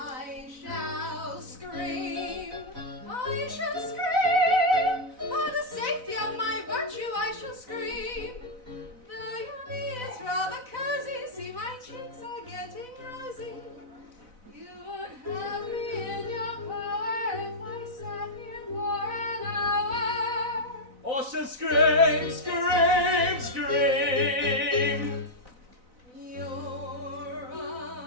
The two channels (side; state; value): left; late; 4.0 ms